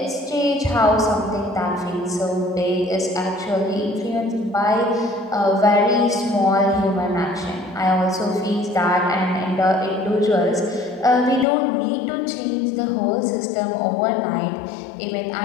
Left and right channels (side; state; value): right; drops out; at 11.5 s